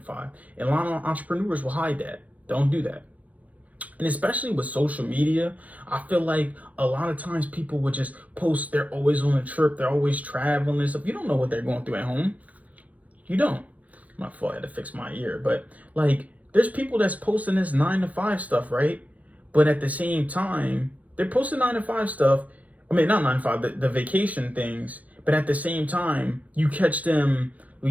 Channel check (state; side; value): late; left; 0.069 ms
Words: 5. And a lot of entrepreneurs will hide that. Don't do that. And especially with social media, I feel like a lot of times people would just post they're always on a trip, they're always traveling and stuff. You don't know what they're going through at home. You don't. My fault, I had to fix my ear. But like, there's people that's posting this 9 to 5 stuff, right? But at the same time, they're posting 9 to 5 stuff. I mean, not 9 to 5, the vacation things. But at the same time, you catch them,